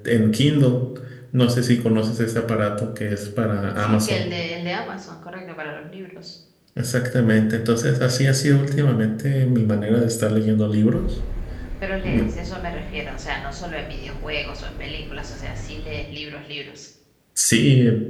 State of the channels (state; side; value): identical; both; correlation 1.00